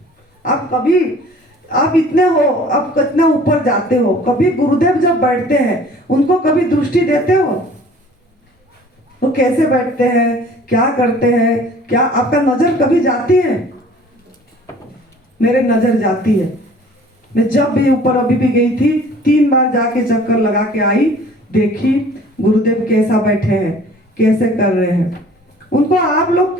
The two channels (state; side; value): normal; both; correlation 0.50